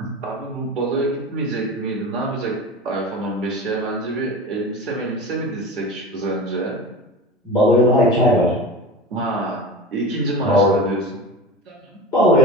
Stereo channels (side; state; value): both; normal; correlation 0.32